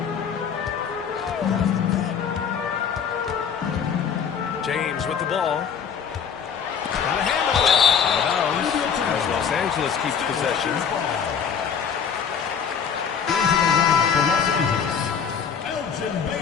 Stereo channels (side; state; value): right; quieter; 7.1 dB